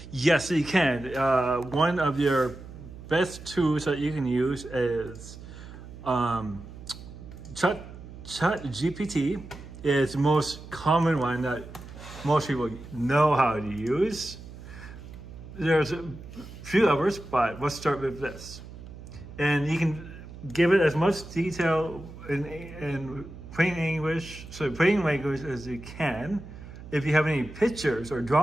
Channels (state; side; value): noise; right; hum, 15 dB below the sound